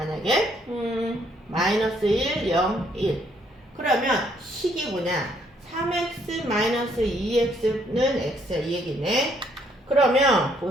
마이너스 1, 0, 1 그러면 식이 뭐냐 3x 마이너스 2x는 x야 이 얘기네. 그러면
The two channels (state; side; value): normal; both; correlation 0.68